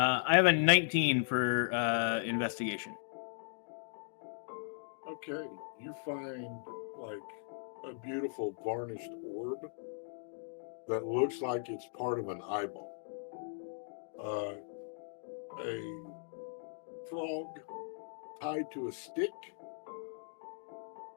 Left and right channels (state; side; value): silent; right; digital silence